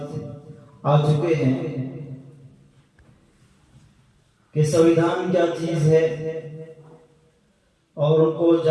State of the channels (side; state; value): both; identical; correlation 1.00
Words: आ चुके हैं कि संविधान क्या चीज़ है और उनको